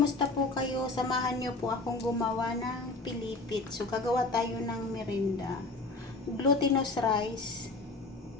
po kayo? Samahan niyo po akong gumawa ng pilipit. So, gagawa tayo ng merinda. Glutinous rice.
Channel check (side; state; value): right; quieter; 3.3 dB